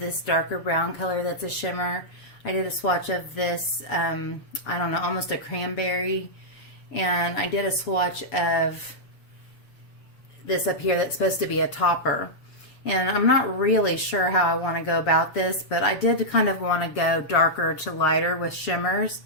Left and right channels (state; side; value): late; right; 7.2 ms